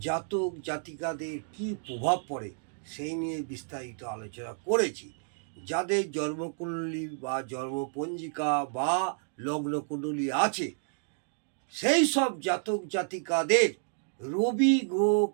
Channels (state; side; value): silent; left; digital silence